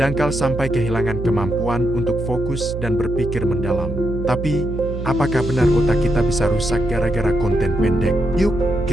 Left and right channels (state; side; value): noise; right; hum, 6 dB below the sound